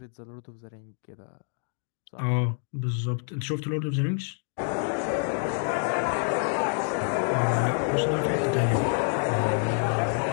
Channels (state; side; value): silent; right; 60 dB below the other